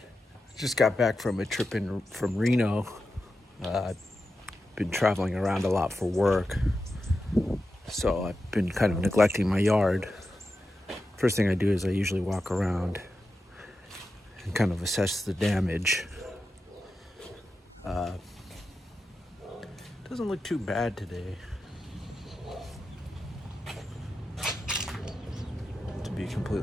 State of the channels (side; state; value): both; normal; correlation 0.90